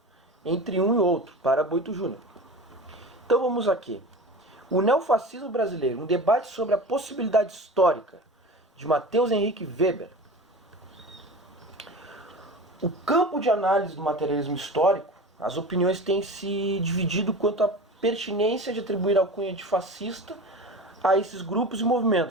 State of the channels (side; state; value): both; normal; correlation 0.33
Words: entre um e outro para Boito Júnior. Então vamos aqui. O neofascismo brasileiro, um debate sobre a possibilidade histórica, de Matheus Henrique Weber. O campo de análise do materialismo histórico, as opiniões têm se dividido quanto à pertinência de atribuir a alcunha de fascista a esses grupos e